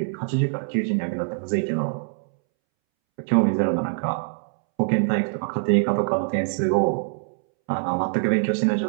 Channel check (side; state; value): left; silent; 63 dB below the other